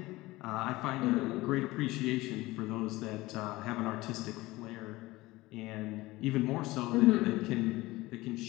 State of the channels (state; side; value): quieter; right; 19.5 dB